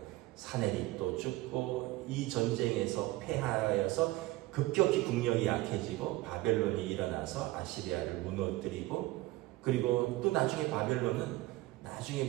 사내립도 죽고 이 전쟁에서 패하여서 급격히 국력이 약해지고 바벨론이 일어나서 아시리아를 무너뜨리고, 그리고 또 나중에 바벨론은 나중에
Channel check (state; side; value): quieter; left; 18.9 dB